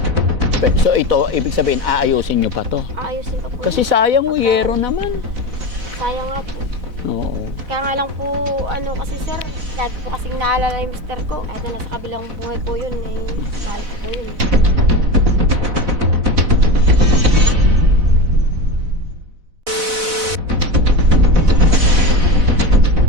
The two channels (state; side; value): late; left; 4.0 ms